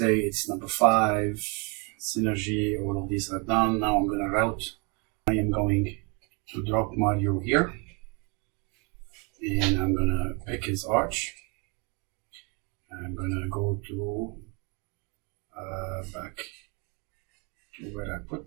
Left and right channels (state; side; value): quieter; left; 32.6 dB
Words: it's number 5, Synergy, all of these are done. Now I'm gonna route. I am going to drop Mario here. And I'm gonna pick his arch. I'm gonna go to back to where I